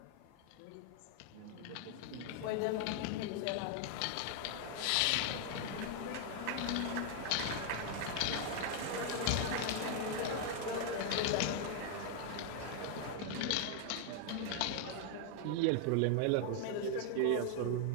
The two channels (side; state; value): both; different; correlation 0.00